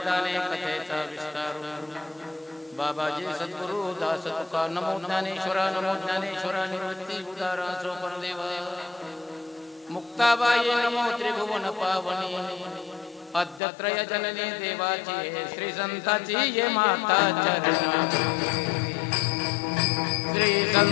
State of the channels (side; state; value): right; drops out; at 13.6 s